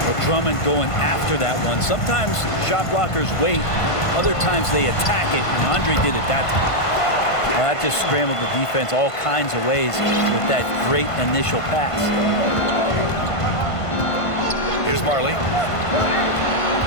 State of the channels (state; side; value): late; right; 1.5 ms